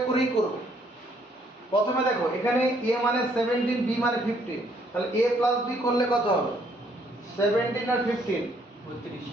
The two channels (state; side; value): normal; both; correlation 0.67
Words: করেই করব। প্রথমে দেখো এখানে a মানে 17, b মানে 15, তাহলে a প্লাস b করলে কত হবে? 17 আর 15 32,